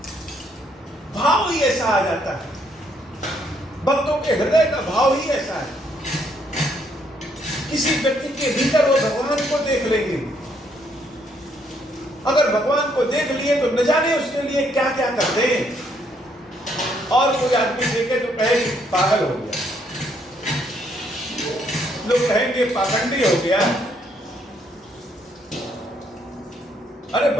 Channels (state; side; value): normal; both; correlation 0.71